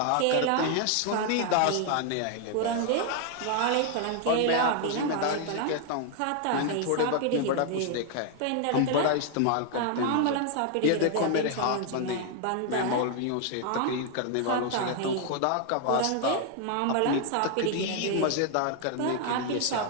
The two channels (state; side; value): different; both; correlation 0.00